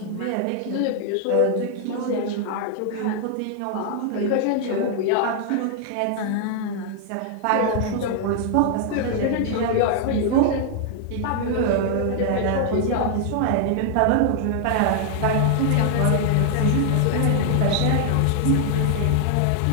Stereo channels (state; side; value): different; both; correlation 0.00